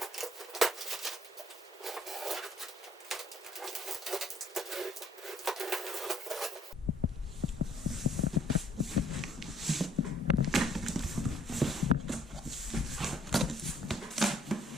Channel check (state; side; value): normal; both; correlation 0.62